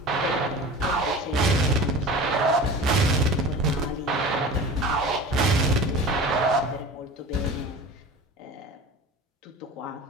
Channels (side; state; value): both; normal; correlation 0.37